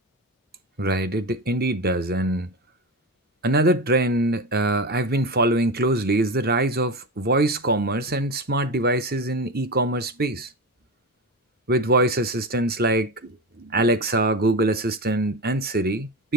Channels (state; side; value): normal; both; correlation 0.22